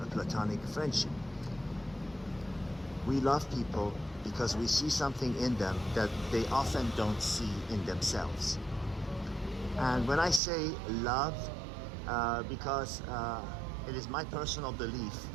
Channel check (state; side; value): drops out; left; at 10.4 s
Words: platonic friendship. We love people because we see something in them that they often don't see in themselves. And when I say love, because it is my personal belief